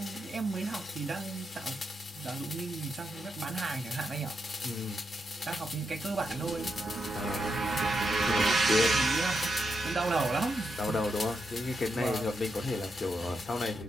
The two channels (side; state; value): both; normal; correlation 0.84